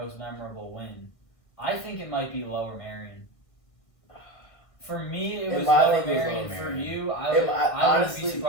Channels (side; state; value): right; late; 1.5 ms